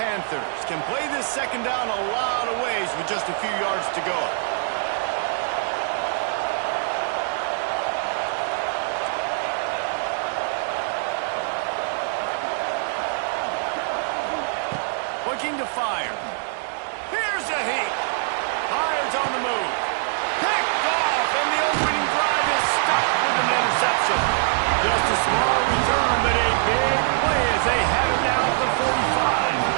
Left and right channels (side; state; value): left; silent; digital silence